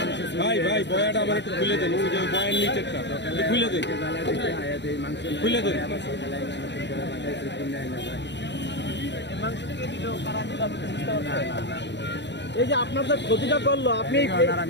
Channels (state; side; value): late; right; 0.51 ms